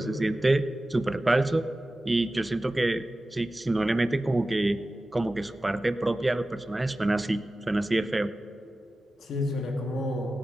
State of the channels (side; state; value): both; normal; correlation 0.95